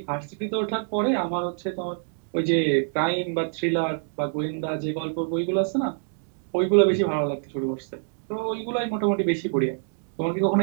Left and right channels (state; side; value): silent; left; digital silence